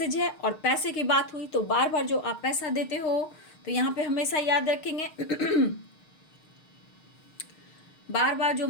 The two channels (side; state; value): right; late; 6.5 ms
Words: है। और पैसे की बात हुई तो बार बार जो आप पैसा देते हो तो यहाँ पे हमेशा याद रखेंगे बार बार जो